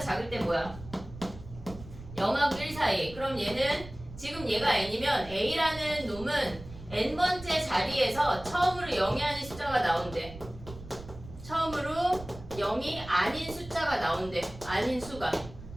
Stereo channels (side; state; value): right; noise; rumble, 15 dB below the sound